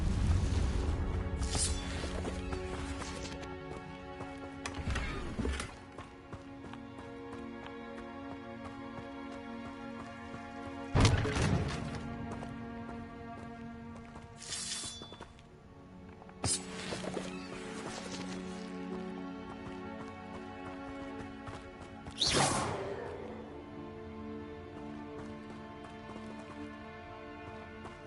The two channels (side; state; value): both; identical; correlation 1.00